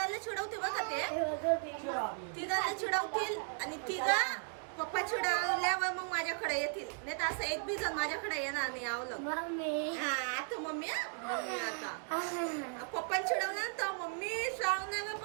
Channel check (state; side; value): silent; left; 54 dB below the other